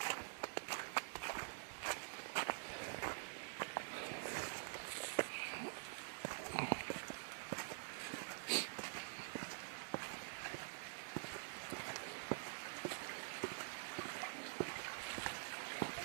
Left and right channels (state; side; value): silent; left; digital silence